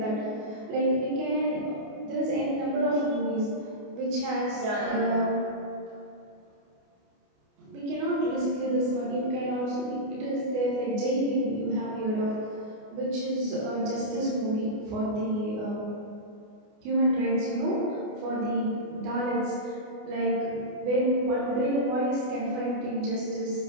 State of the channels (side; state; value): left; late; 28 ms